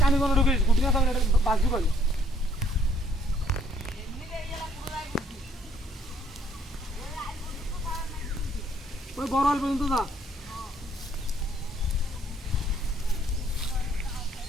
কানি কোনো ঢুকে গুটি না থাকলে এটা বাজু পাইল ওই বড় আল পর্যন্ত যা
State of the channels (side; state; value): both; normal; correlation 0.63